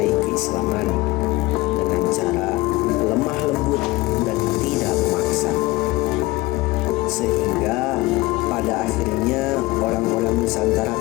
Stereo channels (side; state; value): right; quieter; 20.7 dB